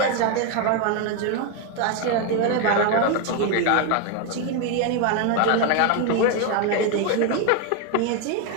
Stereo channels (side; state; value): both; different; correlation 0.01